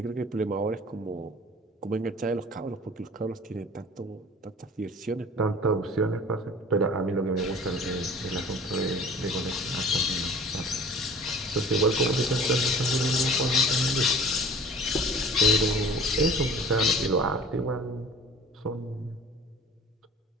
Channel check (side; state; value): both; normal; correlation 0.45